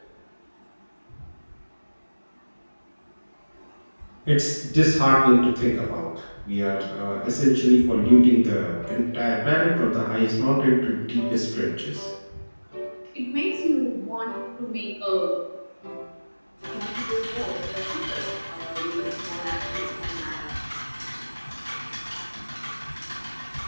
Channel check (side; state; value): both; inverted; correlation -1.00